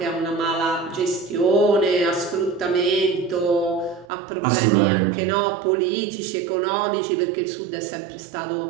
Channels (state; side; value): drops out; left; at 4.0 s